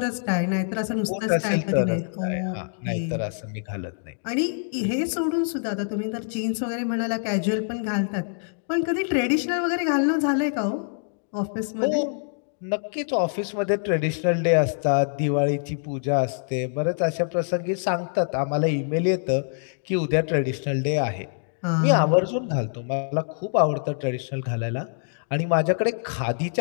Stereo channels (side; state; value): right; silent; digital silence